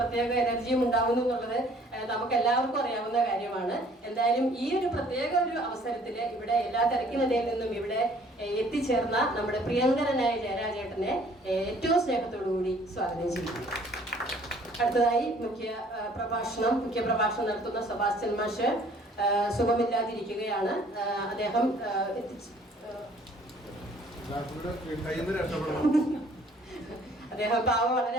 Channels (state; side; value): normal; both; correlation 0.57